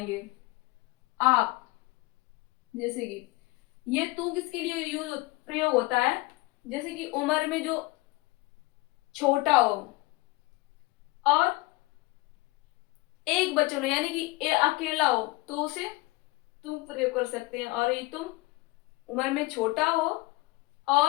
आप। जैसे कि ये तू किसके लिए यूज प्रयोग होता है, जैसे कि उम्र में जो छोटा हो और एक बच्चों यानी कि अकेला हो तो उसे तुम प्रयोग कर सकते हैं। और ये तुम उम्र में छोटा हो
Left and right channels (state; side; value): quieter; right; 22.1 dB